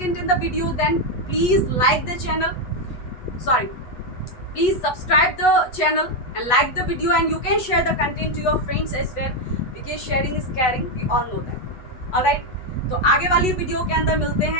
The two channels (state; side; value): late; right; 8.1 ms